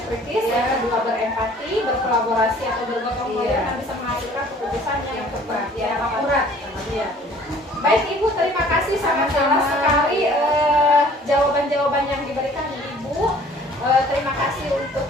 kritis, yang kedua berempati, berkolaborasi atau bergotong royong yang bisa menghasilkan keputusan yang tepat, yang akurat. Baik Ibu, terima kasih, sangat jelas sekali jawaban-jawaban yang diberikan Ibu. Terima kasih untuk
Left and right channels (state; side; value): normal; both; correlation 0.53